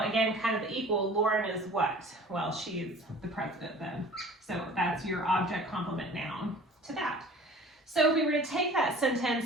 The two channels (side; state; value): both; normal; correlation 0.45